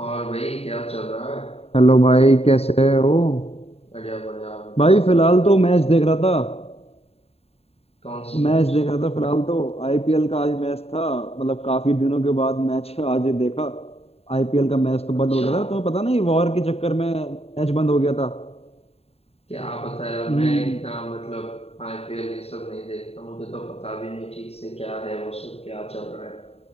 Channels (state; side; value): late; right; 0.29 ms